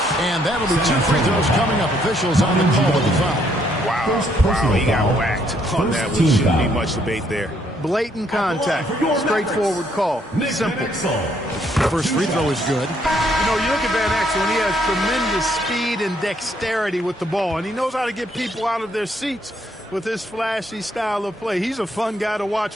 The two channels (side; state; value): both; normal; correlation 0.70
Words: And that'll be 2 free throws coming up. Officials on the call of the foul. Wow, he got whacked on that. There shouldn't be much debate there. Blatant contact. Straightforward call. Simple. First free throw is good. You know, you look at Van Exel, and he has tremendous speed and dexterity with the ball, and he knows how to get people out of their seats with his flashy style of play. He's a fun guy to